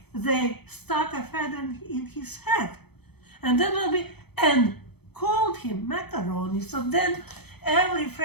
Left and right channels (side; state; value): right; late; 0.97 ms